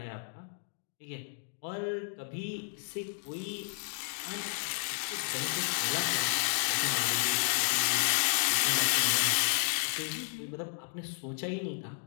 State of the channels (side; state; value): right; silent; digital silence